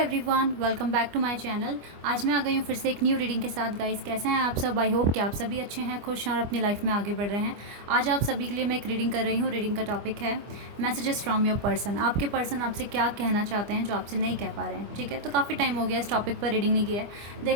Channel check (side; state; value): left; late; 25 ms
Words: welcome back to my channel. आज मैं आ गई हूँ फिर से एक न्यू रीडिंग के साथ। गाइस, कैसे हैं आप सब? आई होप कि आप सभी अच्छे हैं, खुश हैं और अपनी लाइफ में आगे बढ़ रहे हैं। आज आप सभी के लिए मैं एक रीडिंग कर रही हूँ। रीडिंग का टॉपिक है मैसेजेस फ्रॉम योर पर्सन। आपके पर्सन आपसे क्या कहना चाहते हैं जो आपसे नहीं कह पा रहे हैं। ठीक है, तो काफ़ी टाइम हो गया इस टॉपिक पर रीडिंग नहीं किया है।